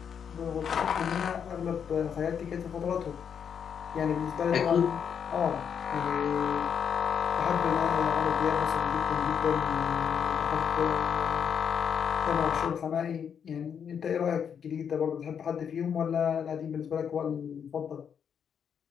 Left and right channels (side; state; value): right; quieter; 7.6 dB